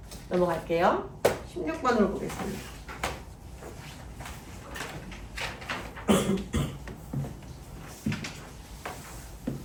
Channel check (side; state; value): both; identical; correlation 1.00